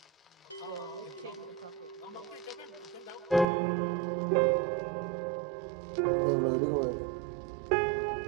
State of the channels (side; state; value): left; drops out; at 3.5 s